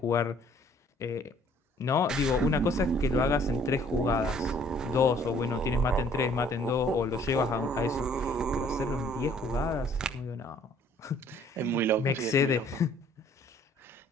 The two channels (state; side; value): normal; both; correlation 0.58